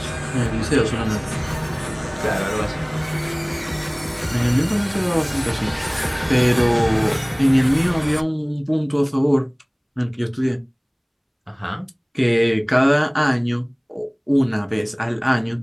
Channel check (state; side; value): identical; both; correlation 1.00